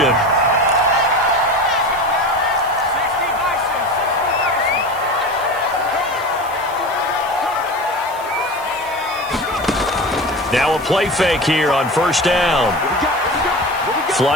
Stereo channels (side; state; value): right; noise; hiss, 19 dB below the sound